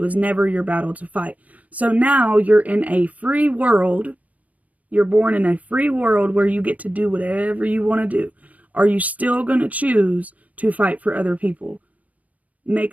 never your battle to fight. So now you're in a free world. You're born in a free world where you get to do whatever you want to do. Are you still going to choose to fight for other people? make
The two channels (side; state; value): left; late; 0.070 ms